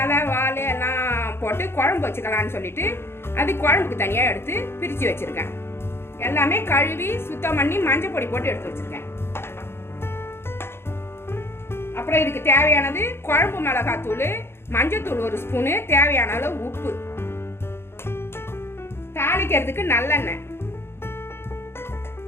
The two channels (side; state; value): right; late; 0.12 ms